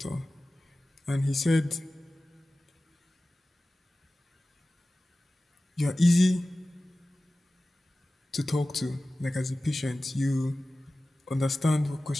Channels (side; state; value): both; normal; correlation 0.96